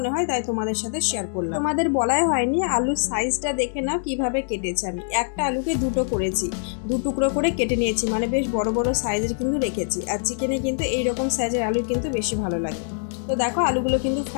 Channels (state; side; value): silent; right; digital silence